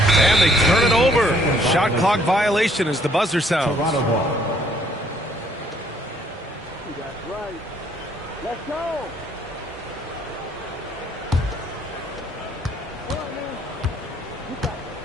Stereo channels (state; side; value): normal; both; correlation 0.64